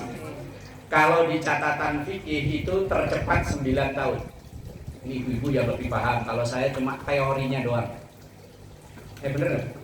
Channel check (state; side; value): identical; both; correlation 1.00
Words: Kalau di catatan fikih itu tercepat 9 tahun. Ini ibu-ibu yang lebih paham. Kalau saya cuma teorinya doang. Bener nggak?